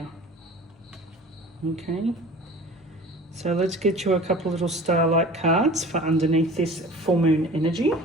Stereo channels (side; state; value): both; normal; correlation 0.42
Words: Okay. So let's get you a couple little starlight cards for underneath this full moon energy.